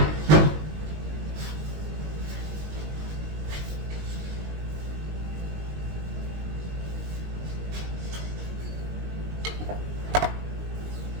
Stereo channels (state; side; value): late; left; 19 ms